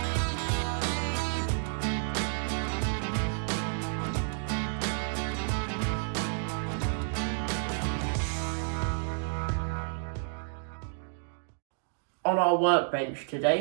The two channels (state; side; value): silent; left; digital silence